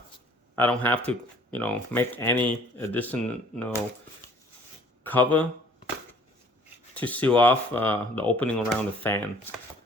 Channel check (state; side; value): normal; both; correlation 0.55